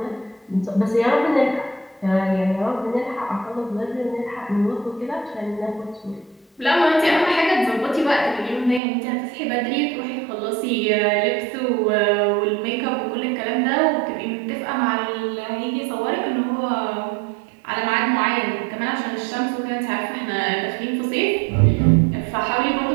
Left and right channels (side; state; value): left; drops out; at 8.8 s